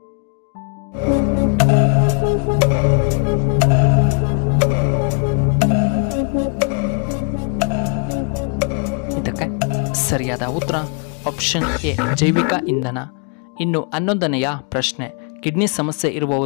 ಇದಕ್ಕೆ ಸರಿಯಾದ ಉತ್ತರ ಆಪ್ಷನ್ ಎ ಜೈವಿಕ ಇಂಧನ. ಇನ್ನು 11ನೆಯ ಪ್ರಶ್ನೆ, ಕಿಡ್ನಿ ಸಮಸ್ಯೆ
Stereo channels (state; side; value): quieter; right; 36.9 dB